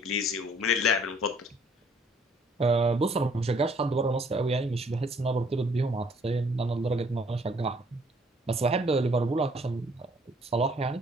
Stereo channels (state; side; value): normal; both; correlation 0.61